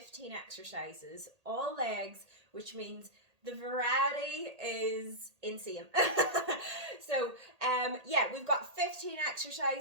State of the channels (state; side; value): late; left; 1.8 ms